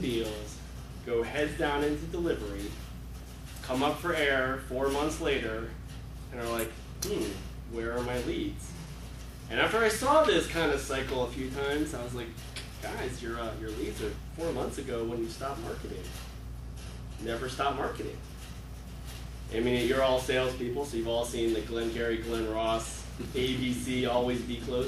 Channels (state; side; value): identical; both; correlation 1.00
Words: deals, go heads down into delivery, come up for air 4 months later, and are like, where are my leads? And after I saw this kind of cycle a few times, I was like, guys, your leads are 4 months ago when you stopped marketing. Never stop marketing. I mean, you're all salespeople, so you've all seen the Glenn Gary, Glenn Ross, ABC, always be